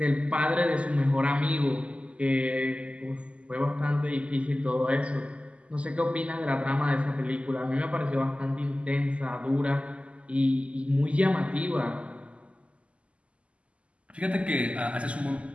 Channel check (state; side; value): late; left; 0.058 ms